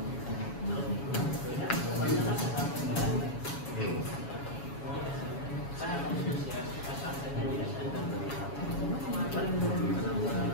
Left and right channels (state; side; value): late; right; 7.2 ms